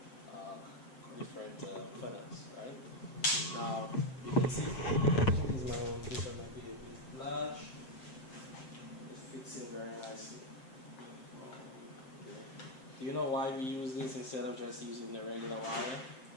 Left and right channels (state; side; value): late; right; 7.7 ms